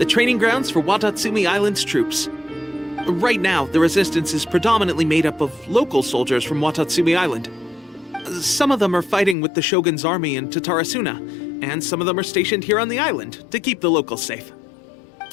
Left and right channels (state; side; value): drops out; right; at 9.3 s